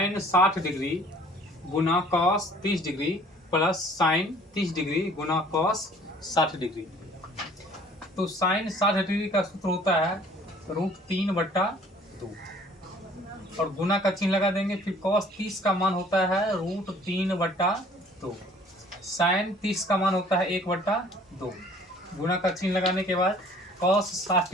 60 डिग्री गुना cos 30 degree plus sine 30 degree गुना कॉस 60 डिग्री। तो साइन 60 डिग्री का सूत्र होता है √3/2 और गुना का चिन्ह लगा देंगे। फिर कॉस 30 का मान होता है √3/2। साइन 30 का मान होता है 1/2। गुना का चिन्ह लगाने के बाद कॉस 60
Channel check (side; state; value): both; normal; correlation 0.54